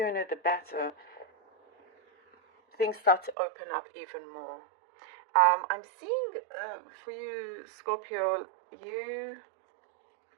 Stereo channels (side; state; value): left; drops out; at 3.4 s